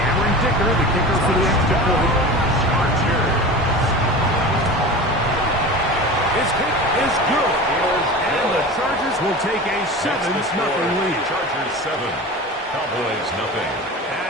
Cameron Dicker, the kicker for the extra point. His kick is good. And the Chargers will take a 7-0 lead. Chargers 7. Cowboys nothing.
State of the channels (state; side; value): normal; both; correlation 0.33